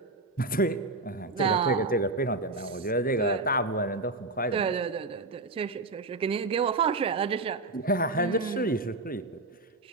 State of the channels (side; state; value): left; quieter; 3.1 dB